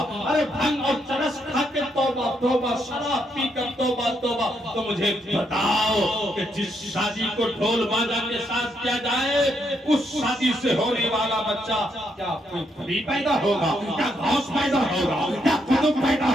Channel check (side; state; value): both; normal; correlation 0.77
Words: ارے بھنگ اور چرس کھا کے توبہ توبہ، شراب پی کر توبہ توبہ۔ تو مجھے بتاؤ کہ جس شادی کو ڈھول باجا کے ساتھ کیا جائے، اس شادی سے ہونے والا بچہ کیا کوئی پری پیدا ہوگا، کیا غوث پیدا ہوگا، کیا قطب پیدا